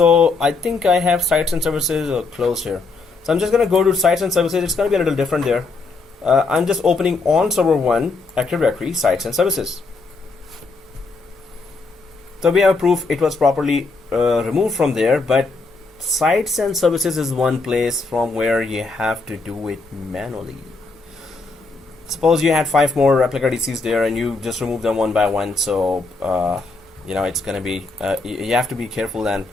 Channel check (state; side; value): quieter; right; 3.8 dB